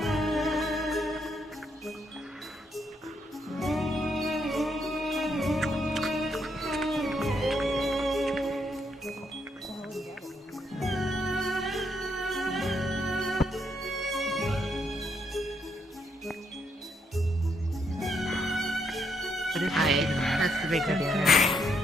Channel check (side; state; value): both; normal; correlation 0.76